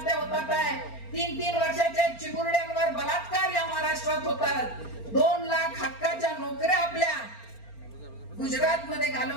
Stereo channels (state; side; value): late; right; 4.4 ms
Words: होतात आहे. 3-3 वर्षाच्या चिमुरड्यांवर बलात्कार या महाराष्ट्रात होतात. 2 लाख हक्काच्या नोकऱ्या आपल्या गुजरात मध्ये